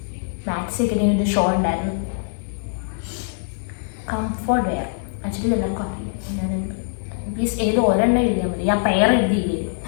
മാക്സി ഒക്കെ ഒരു ഷോ ഉണ്ടായിരുന്നു. കംഫർട്ട് വെയർ ആക്ച്വലി എല്ലാവർക്കും അറിയാം. പ്ലീസ് ഏത് ഒരെണ്ണം എഴുതിയാൽ മതി. ഞാൻ പെയർ എഴുതിയില്ലേ?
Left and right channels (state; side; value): silent; right; digital silence